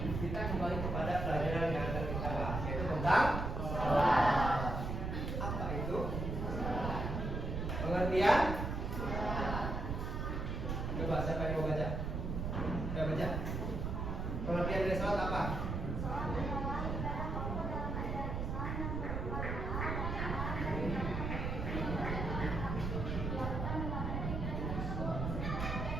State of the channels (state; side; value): noise; right; rumble, 2 dB below the sound